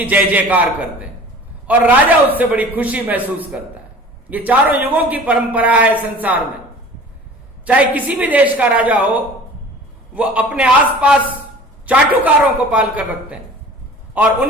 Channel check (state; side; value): normal; both; correlation 0.44